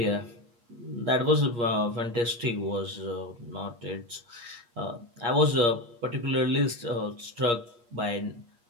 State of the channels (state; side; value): late; left; 8.5 ms